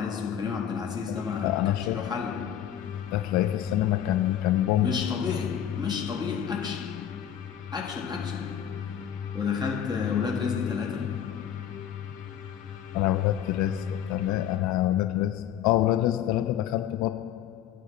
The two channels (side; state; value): right; quieter; 9.9 dB